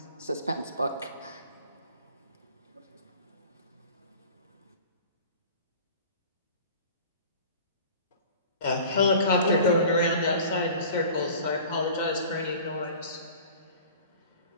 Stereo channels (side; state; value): both; inverted; correlation -0.43